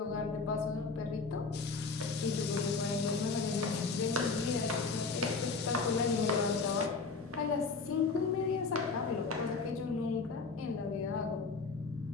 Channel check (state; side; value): quieter; right; 4.4 dB